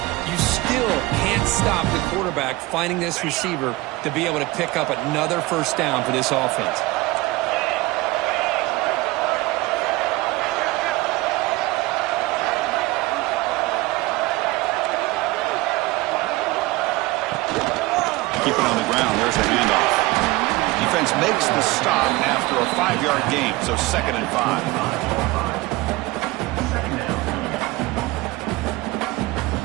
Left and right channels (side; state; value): left; quieter; 20.7 dB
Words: You still can't stop the quarterback finding this receiver to be able to pick up another first down for this offense. Keep it on the ground. There's the handoff. Defense makes the stop after a 5-yard gain, so 2nd and 5.